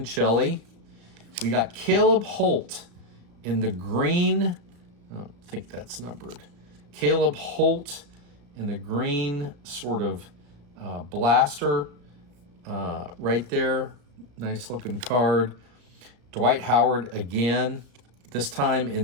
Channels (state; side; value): late; left; 35 ms